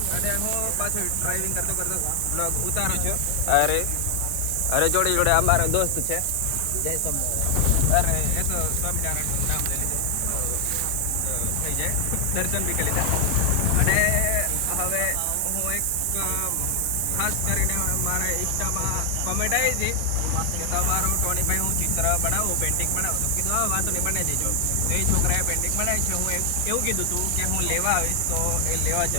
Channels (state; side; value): different; both; correlation 0.00